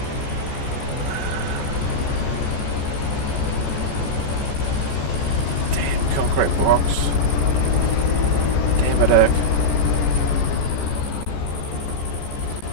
Damn concrete blocks. Damn it, Erk.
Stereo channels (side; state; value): right; late; 14 ms